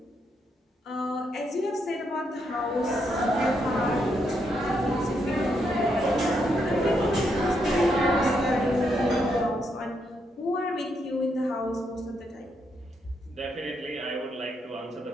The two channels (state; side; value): normal; both; correlation 0.78